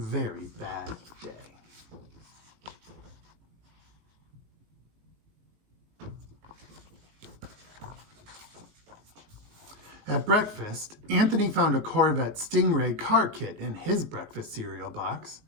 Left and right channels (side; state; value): left; late; 19 ms